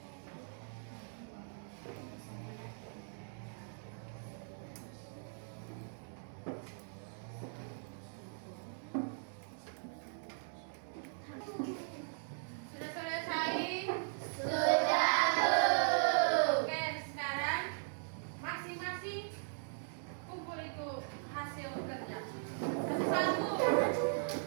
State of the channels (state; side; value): silent; left; digital silence